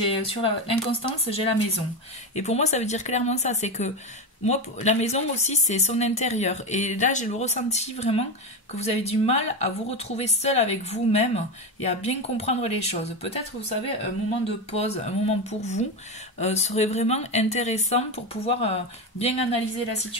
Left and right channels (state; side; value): normal; both; correlation 0.15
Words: sur l'inconstance, j'ai la maison. Et pour moi, ça veut dire clairement ça, c'est que moi, la maison aussi, c'est son intérieur. Et là, j'ai le ressenti vraiment que vous avez du mal à vous retrouver seul avec vous-même et à bien comprendre les choses. Peut-être, vous savez, un moment de pause, un moment pour vous, serait vraiment intéressant pour pouvoir bien analyser la